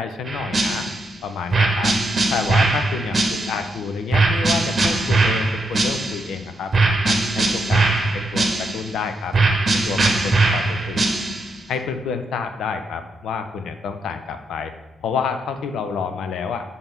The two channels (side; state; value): both; normal; correlation 0.80